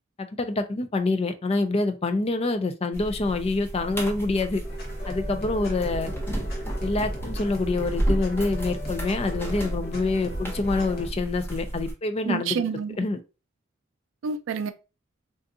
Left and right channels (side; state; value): both; normal; correlation 0.71